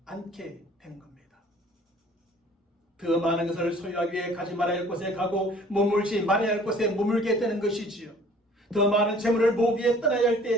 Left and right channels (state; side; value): normal; both; correlation 0.53